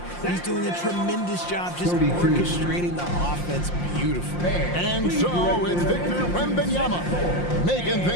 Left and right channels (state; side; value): late; right; 5.7 ms